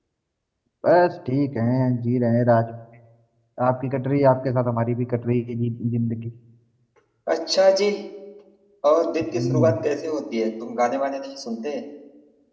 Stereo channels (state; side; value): identical; both; correlation 1.00